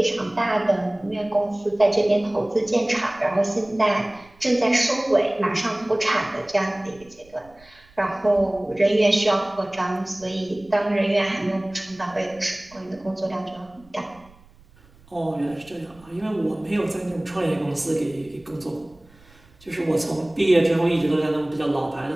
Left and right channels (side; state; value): right; noise; rumble, 27 dB below the sound